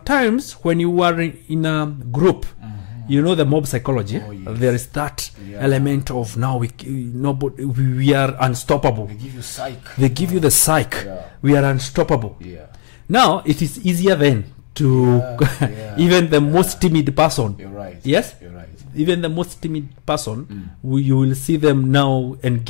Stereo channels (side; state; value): right; silent; digital silence